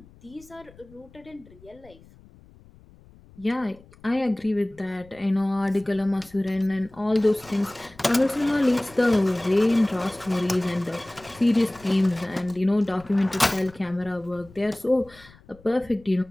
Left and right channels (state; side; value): noise; left; rumble, 25 dB below the sound